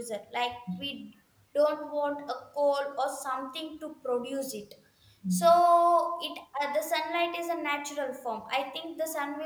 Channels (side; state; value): both; identical; correlation 1.00